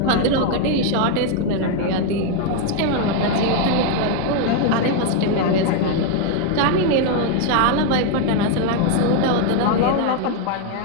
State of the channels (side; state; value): both; different; correlation 0.01